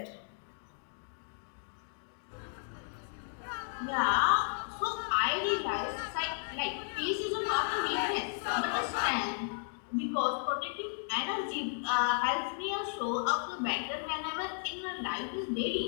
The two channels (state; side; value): silent; right; digital silence